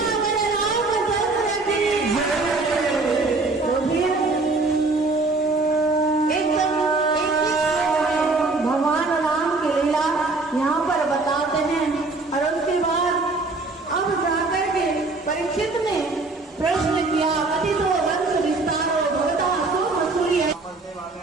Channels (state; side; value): quieter; left; 3.5 dB